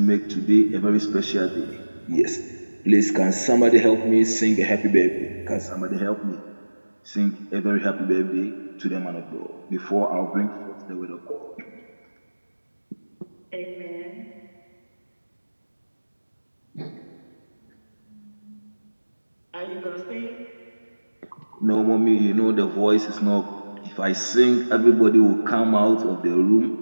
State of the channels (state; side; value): inverted; both; correlation -1.00